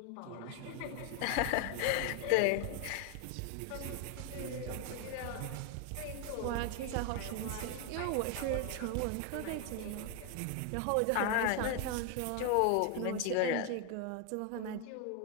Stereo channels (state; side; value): different; both; correlation 0.01